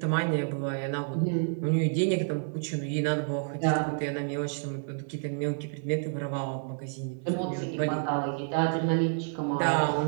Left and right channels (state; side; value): silent; left; 58 dB below the other